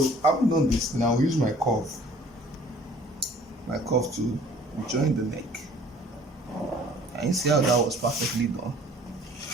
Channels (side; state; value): both; normal; correlation 0.54